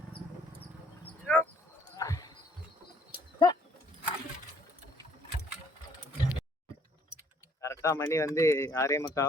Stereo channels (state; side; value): normal; both; correlation 0.62